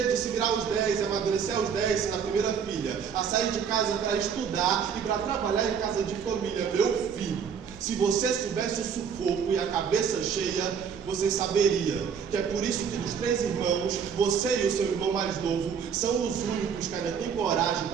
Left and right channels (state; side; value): quieter; left; 7.1 dB